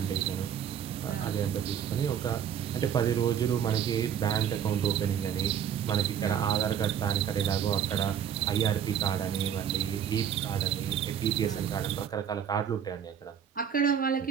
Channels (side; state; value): left; quieter; 8.7 dB